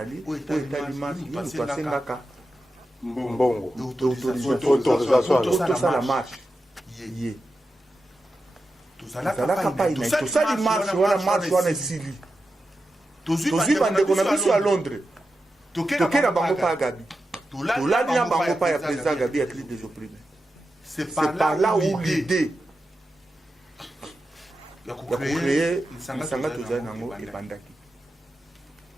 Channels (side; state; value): both; normal; correlation 0.90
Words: oyo etali marche nini twasengaka mbongo tosala marche ye tozalaka pai na tosali marche wana esili tozwi bandeko na biso ya Londres toke na bango pa ya Gabi tolali na bango pa ya président Gabi ya crise des opprimés. C'est par là où l'idée ya kucreye lisanga tozali nango ebandaki.